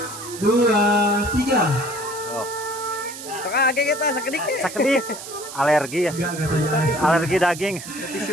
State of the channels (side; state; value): right; noise; hiss, 12 dB below the sound